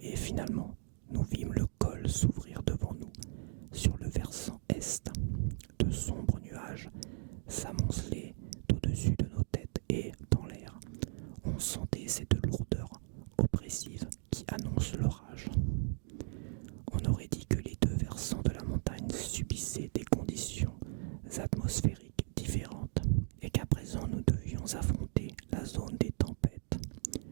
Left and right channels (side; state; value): left; silent; 53 dB below the other